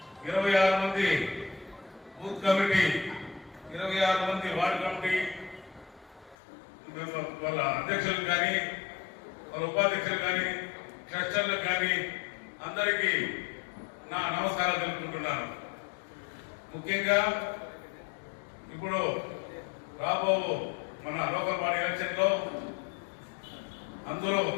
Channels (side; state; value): right; drops out; at 6.4 s